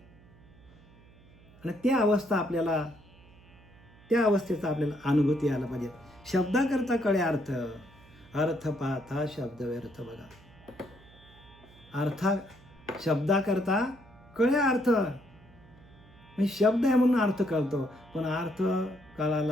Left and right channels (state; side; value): noise; right; hum, 25 dB below the sound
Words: आणि त्या अवस्थेचा आपल्याला अनुभूती यायला पाहिजे. शब्दाकरता कळे अर्थ, अर्थ पाहता शब्द व्यर्थ. बघा, शब्दाकरता कळे अर्थ. म्हणजे शब्द आहे म्हणून अर्थ कळतो, पण अर्थ